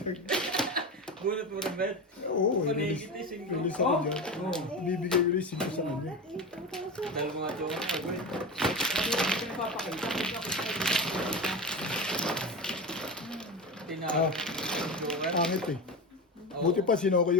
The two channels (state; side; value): normal; both; correlation 0.23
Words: Bunot mo rin, Bet. Oo, Panigit eh, singko. release ako dyan. Bibigay ko rin 5 sa kanya. Dahil mga jowa ko, Bet. Sabi ko, hindi pinapapakita. Hindi ako sa Ah. Jowa. Pangit eh. Buti pa sinoko